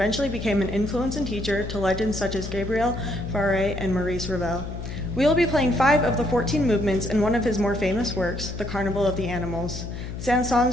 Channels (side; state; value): left; noise; hum, 7 dB below the sound